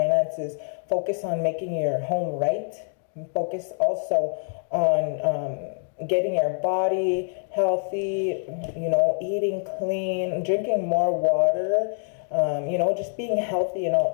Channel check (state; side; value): silent; right; digital silence